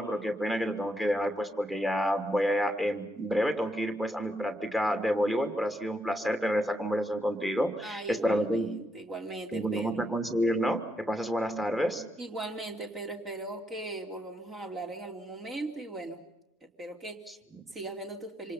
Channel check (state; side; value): normal; both; correlation 0.80